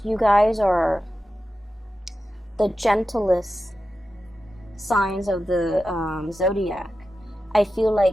you guys are the gentlest signs of the zodiac. I feel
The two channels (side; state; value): both; normal; correlation 0.92